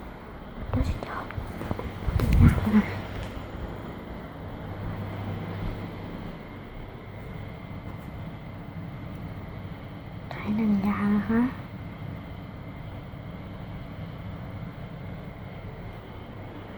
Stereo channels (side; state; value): both; identical; correlation 1.00